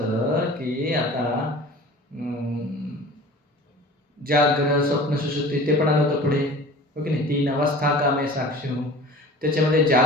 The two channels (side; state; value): both; normal; correlation 0.41